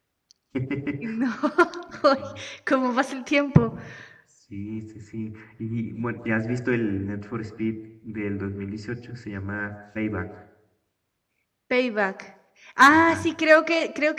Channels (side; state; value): both; identical; correlation 1.00